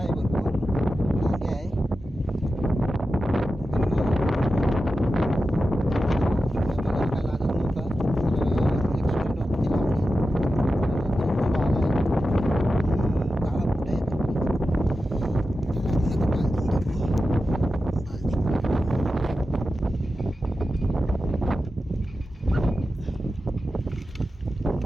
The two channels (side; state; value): both; normal; correlation 0.92